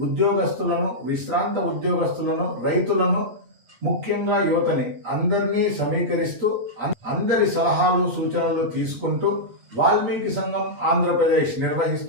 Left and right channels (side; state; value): left; late; 8.3 ms